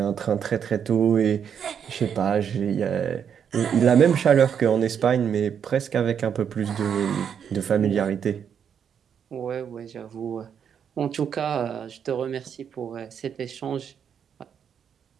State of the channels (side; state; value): left; quieter; 7.9 dB